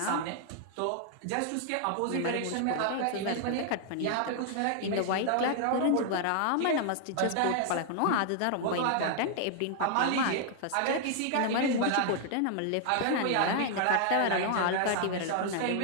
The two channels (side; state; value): both; different; correlation 0.00